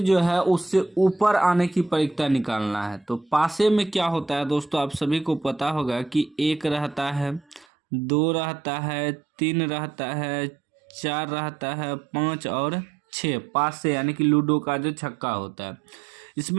है उससे ऊपर आने की परिक्ता निकालना है। तो पासे में क्या होता है दोस्तों, आप सभी को पता होगा कि 1 रहता है, 2 रहता है, 3 रहता है, 4 रहता है, 5 और 6। पासे यानी कि लूडो का जो छक्का होता है,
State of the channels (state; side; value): drops out; left; at 7.7 s